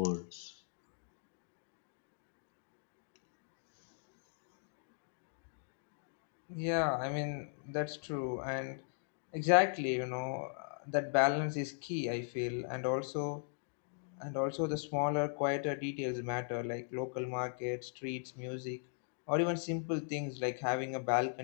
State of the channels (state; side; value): silent; right; digital silence